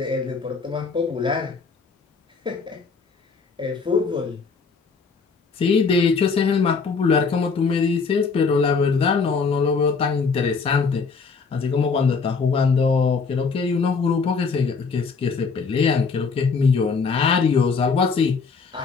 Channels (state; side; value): quieter; right; 5.0 dB